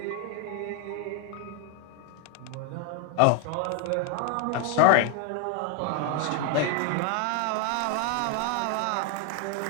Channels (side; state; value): both; different; correlation 0.01